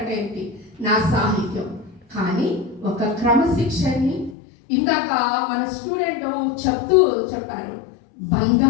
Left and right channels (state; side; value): drops out; right; at 4.4 s